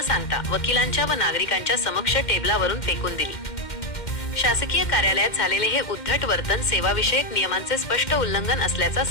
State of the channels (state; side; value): late; right; 2.1 ms